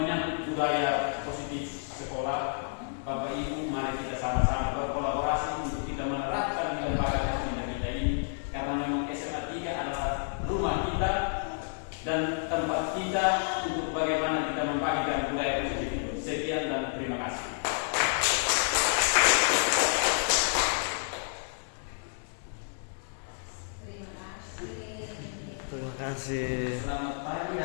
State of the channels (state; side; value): silent; right; 58 dB below the other